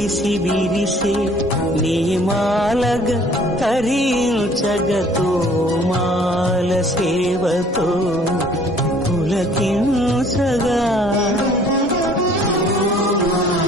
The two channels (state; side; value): normal; both; correlation 0.55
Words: విరిసే నీమాలగ తరించగతో మాల సేవతో పులకించగా